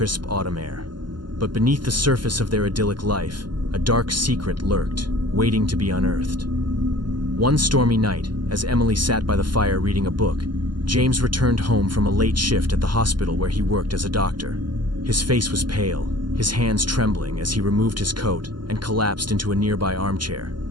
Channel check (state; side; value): late; left; 0.71 ms